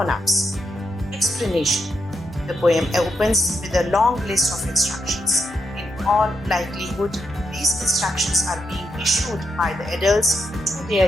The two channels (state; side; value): normal; both; correlation 0.83